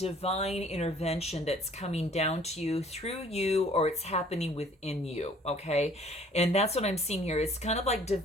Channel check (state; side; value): normal; both; correlation 0.55